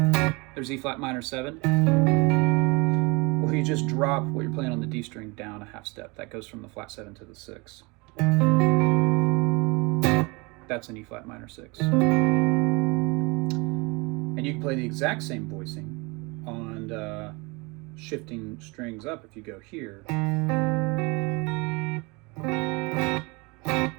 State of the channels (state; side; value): quieter; left; 27.4 dB